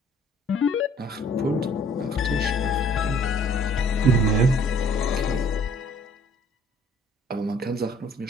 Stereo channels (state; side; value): normal; both; correlation 0.57